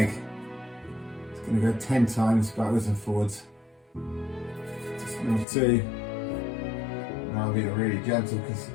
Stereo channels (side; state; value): right; drops out; at 5.5 s